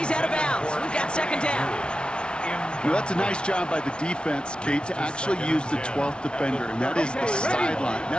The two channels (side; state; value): right; late; 0.056 ms